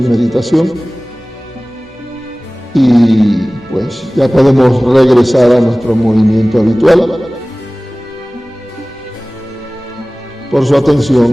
meditación y pues ya podemos regresar a nuestro movimiento habitual. Por su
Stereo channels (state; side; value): normal; both; correlation 0.98